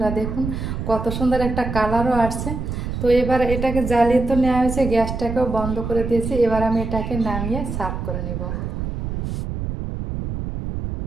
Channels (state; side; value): noise; right; rumble, 4 dB below the sound